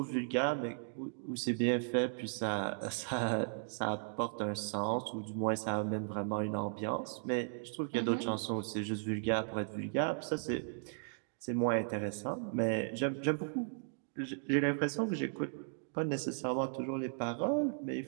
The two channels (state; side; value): silent; left; digital silence